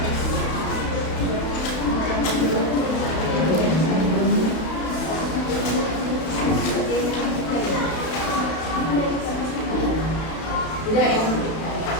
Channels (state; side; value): late; right; 32 ms